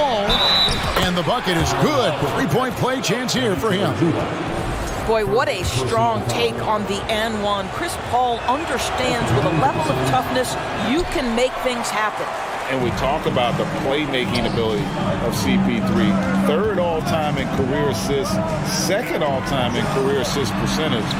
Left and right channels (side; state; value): both; identical; correlation 1.00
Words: And the bucket is good. 3-point play chance here for him. Boy, what a strong take on the and one. Chris Paul understands with a level of toughness, you can make things happen. And we talk about the playmaking ability of CP3. 3rd all-time in career assists, 2nd all-time in career assist percentage,